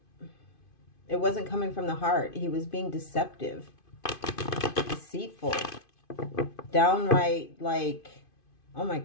coming from the heart. He was being deceptive, deceitful, downright, like, oh my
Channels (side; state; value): right; late; 2.5 ms